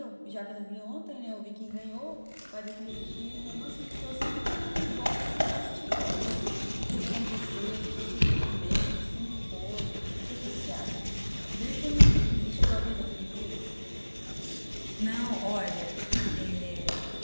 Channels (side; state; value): both; inverted; correlation -1.00